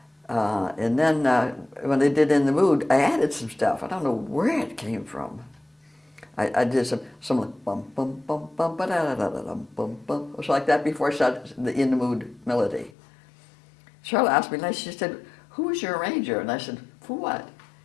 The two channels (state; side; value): drops out; right; at 12.9 s